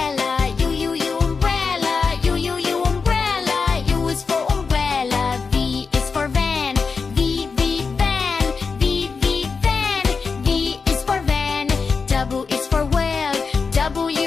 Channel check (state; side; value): quieter; right; 5.0 dB